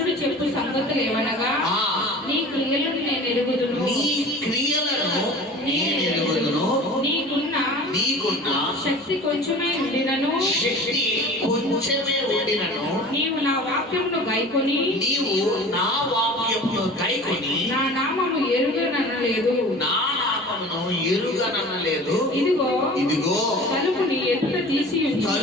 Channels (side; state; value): both; normal; correlation 0.40